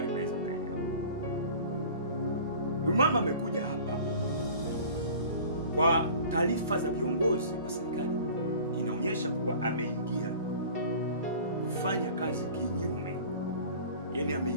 mnaweza mkaelewa. Huyu mama amekuja hapa kwa taarifa za viongozi wa serikali, inaonyesha kuwa ameingia kufanya kazi kinyume, yani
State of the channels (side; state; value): both; inverted; correlation -0.43